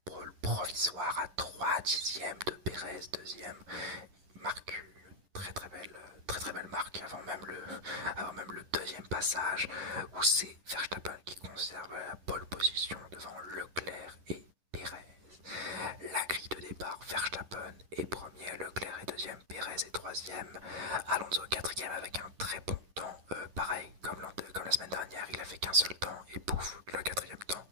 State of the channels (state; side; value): late; left; 10 ms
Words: pole provisoire à 3 dixièmes de Perez, deuxième. Il marque une très belle marque avant même le deuxième passage où c'est Verstappen qui conserve la pole position devant Leclerc et Perez. La grille de départ, Verstappen est premier, Leclerc est deuxième, Perez est troisième, Alonso quatrième avec un très bon temps, pareil comme la semaine dernière, il a fait qu'un seul temps et pouf, le quatrième temps,